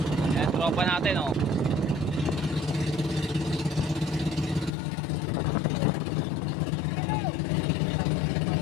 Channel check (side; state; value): right; drops out; at 4.7 s